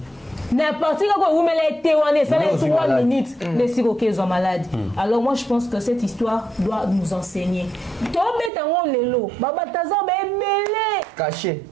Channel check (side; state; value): left; drops out; at 8.5 s